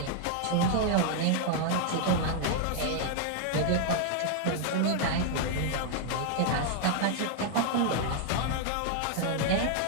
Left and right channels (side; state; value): both; different; correlation 0.00